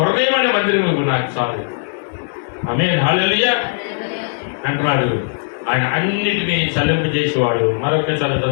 అనే మందిరం నాకు చాలు. ఆమేన్, హల్లెలూయా అంటున్నాడు. ఆయన అన్నిటినీ చలింపజేసేవాడు. మరొకసారి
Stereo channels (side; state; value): right; silent; digital silence